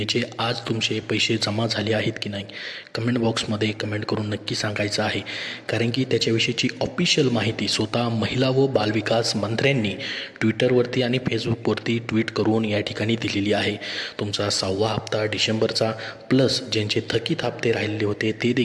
आज तुमचे पैसे जमा झाले आहेत की नाही कमेंट बॉक्समध्ये कमेंट करून नक्की सांगायचं आहे, कारण की त्याच्याविषयीची ऑफिशियल माहिती स्वतः महिला व बालविकास मंत्र्यांनी ट्विटरवरती आणि फेसबुकवरती ट्विट करून या ठिकाणी दिलेली आहे। तुमचा 6वा हप्ता डिसेंबरचा प्लस ज्यांचे थकीत हप्ते राहिलेले होते ते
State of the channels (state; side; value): identical; both; correlation 1.00